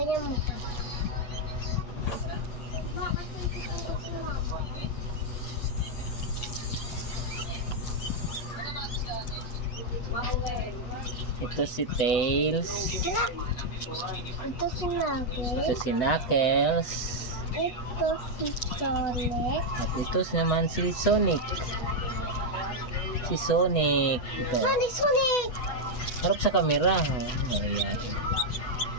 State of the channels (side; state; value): right; late; 8.1 ms